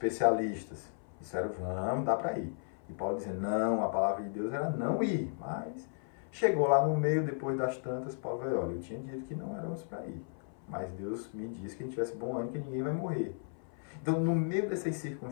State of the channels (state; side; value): silent; right; 55 dB below the other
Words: disseram, vamos, dá para ir. E Paulo dizia, não, a palavra de Deus era não ir, mas chegou lá no meio, depois das tantas, Paulo veio, olha, eu tinha dito que não éramos para ir, mas Deus me disse que a gente tivesse bom ânimo, que ninguém vai morrer. Então, no meio dessas